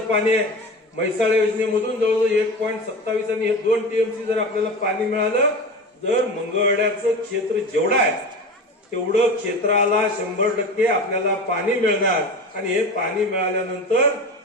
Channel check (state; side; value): normal; both; correlation 0.30